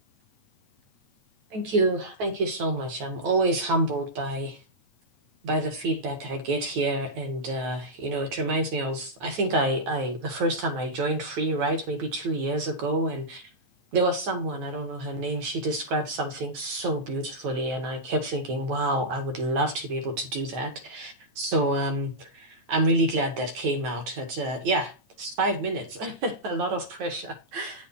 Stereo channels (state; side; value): late; left; 9.2 ms